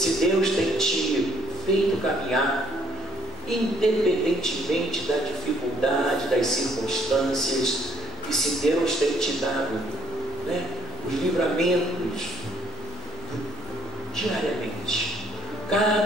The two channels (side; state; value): both; normal; correlation 0.65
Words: Deus tem te feito caminhar, independentemente da dificuldade, das circunstâncias, e se Deus tem te dado, né, os livramentos diariamente,